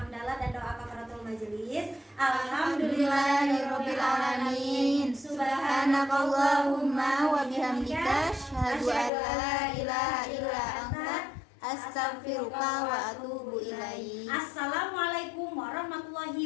dan doa kafaratul majelis. Alhamdulillahirabbil alamin. Subhanakallahumma wa bihamdika asyhadu an la ilaha illa anta astaghfiruka wa atubu ilaik. Assalamualaikum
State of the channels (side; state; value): right; drops out; at 9.1 s